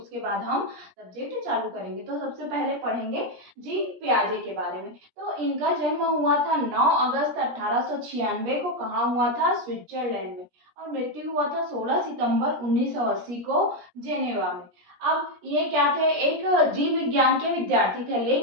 बाद हम सब्जेक्ट चालू करेंगे। तो सबसे पहले पढ़ेंगे जीन पियाजे के बारे में। तो इनका जन्म हुआ था 9 अगस्त 1896 को। कहाँ हुआ था? स्विट्जरलैंड में। और मृत्यु हुआ था 16 सितंबर 1980 को जेनेवा में। अब ये क्या थे? एक जीव विज्ञान के विद्यार्थी थे,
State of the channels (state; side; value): late; left; 17 ms